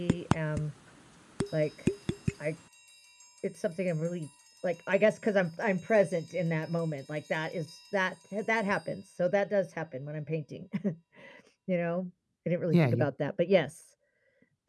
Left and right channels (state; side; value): identical; both; correlation 1.00